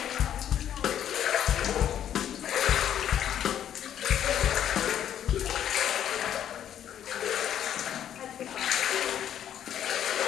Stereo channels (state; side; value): quieter; right; 10.2 dB